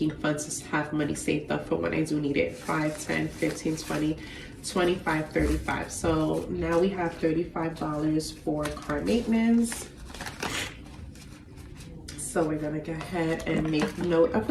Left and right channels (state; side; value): identical; both; correlation 1.00